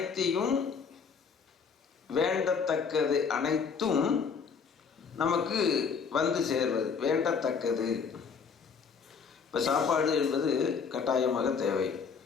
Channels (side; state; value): right; quieter; 5.9 dB